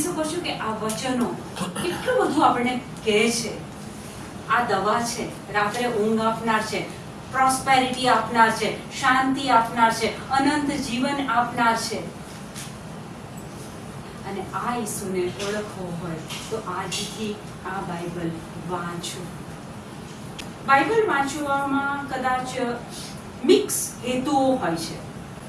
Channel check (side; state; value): both; identical; correlation 1.00